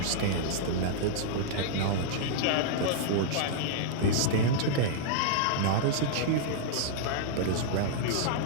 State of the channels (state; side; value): different; both; correlation -0.01